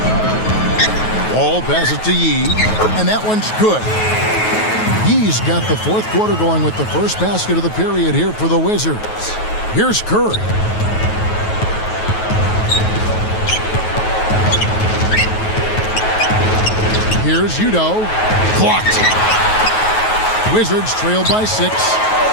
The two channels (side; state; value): right; late; 9.3 ms